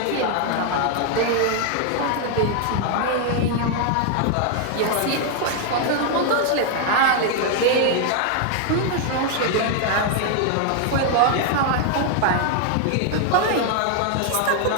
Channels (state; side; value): different; both; correlation 0.00